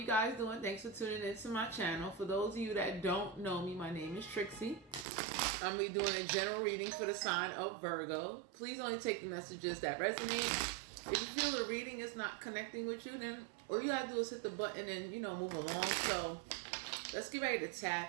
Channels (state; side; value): drops out; left; at 5.1 s